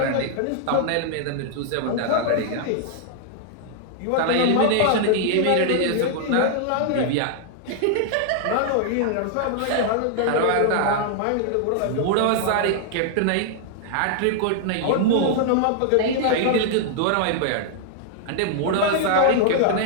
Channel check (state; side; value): different; both; correlation -0.01